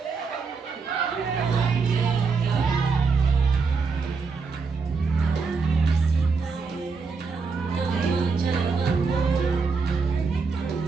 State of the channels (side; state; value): left; quieter; 4.8 dB